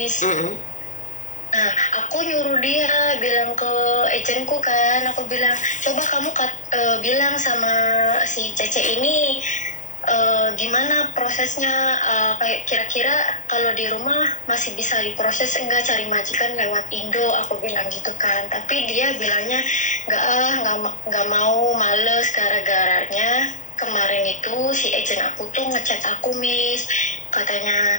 Nah, aku nyuruh dia bilang ke agentku kan, aku bilang, coba kamu bilang sama si Cece ini gimana prosesnya, kayak kira-kira kalau di rumah masih bisa diproses enggak, cari majikan lewat Indo, aku bilang gitu kan. Tapi dia bilangnya nggak mau, males, gara-garanya kemarin itu si agent aku tuh ngechat aku Miss,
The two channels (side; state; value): right; late; 0.36 ms